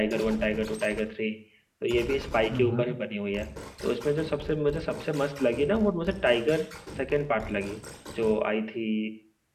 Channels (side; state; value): both; identical; correlation 1.00